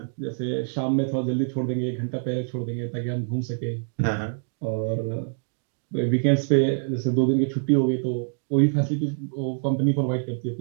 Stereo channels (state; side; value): silent; left; digital silence